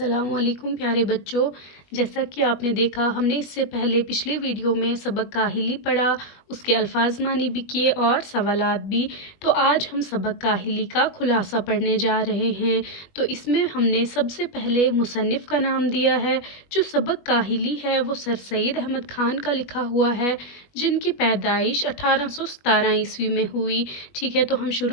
अस्सलाम वालेकुम प्यारे बच्चों। जैसा कि आपने देखा, हमने इससे पहले पिछले वीडियो में सबक काहिली पढ़ा, उसके अल्फाज मानी भी किए और सवालात भी। तो आज हम सबक काहिली का खुलासा पढ़ने जा रहे हैं। तो इसमें हमने सबसे पहले मुसन्निफ़ का नाम दिया है। जो सबक काहिली है वो सर सैयद अहमद खान का लिखा हुआ है, जिनकी पैदाइश 1817 ईस्वी में हुई। ठीक है, तो हम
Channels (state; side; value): late; right; 21 ms